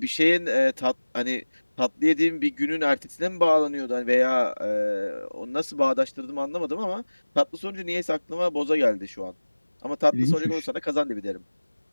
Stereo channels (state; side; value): inverted; both; correlation -1.00